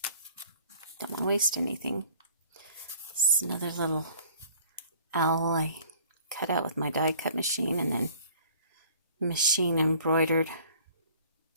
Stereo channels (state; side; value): inverted; both; correlation -0.53